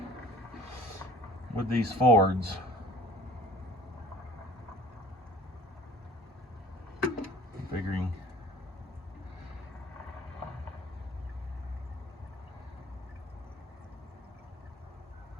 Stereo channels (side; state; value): both; normal; correlation 0.50